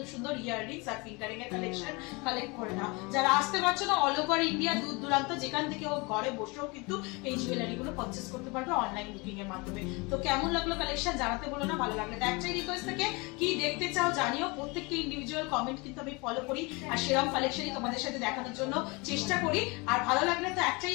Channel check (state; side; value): quieter; right; 27.2 dB